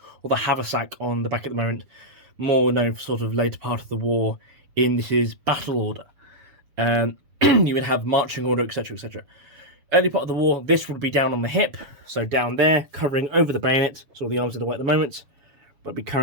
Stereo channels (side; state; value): left; late; 7.3 ms